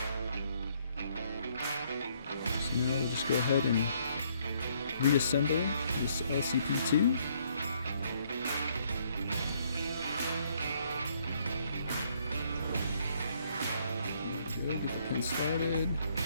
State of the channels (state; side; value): inverted; both; correlation -0.68